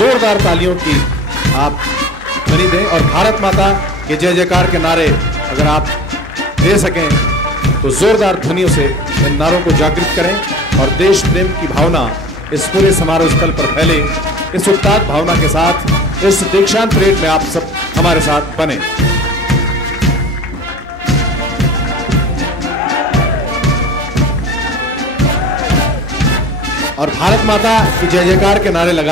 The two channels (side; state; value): both; normal; correlation 0.39